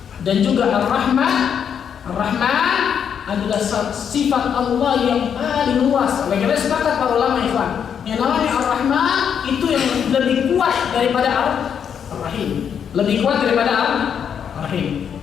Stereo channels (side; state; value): right; quieter; 7.9 dB